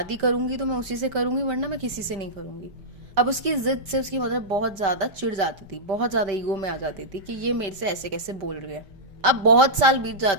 करूंगी तो मैं उसी से करूंगी, वरना मैं किसी से नहीं करूंगी। अब उसकी जिद से उसकी मदर बहुत ज़्यादा चिढ़ जाती थी, बहुत ज़्यादा ईगो में आ जाती थी कि ये मेरे से ऐसे कैसे बोल रही है। अब बहुत साल बीत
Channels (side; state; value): left; late; 5.1 ms